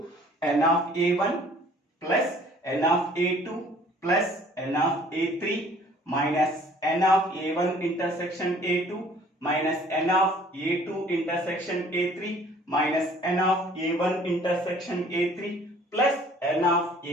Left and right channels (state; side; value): normal; both; correlation 0.54